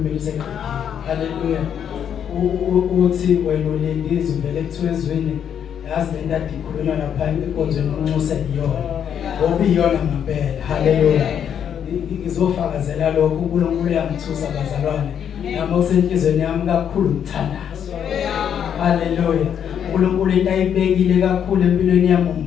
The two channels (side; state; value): right; quieter; 8.7 dB